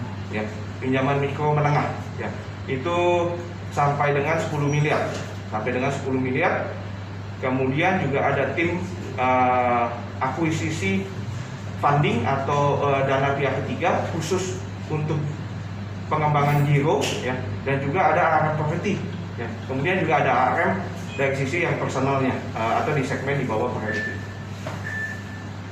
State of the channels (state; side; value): identical; both; correlation 1.00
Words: ya, pinjaman mikro menengah ya. Itu sampai dengan 10 miliar. Kemudian juga ada tim akuisisi funding atau dana pihak ketiga khusus untuk pengembangan giro ya, dan juga ada ARM property ya. Kemudian juga ada ARM dari sisi yang personalnya atau di segmen di bawah priority.